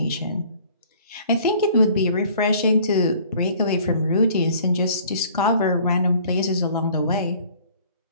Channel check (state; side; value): inverted; both; correlation -0.53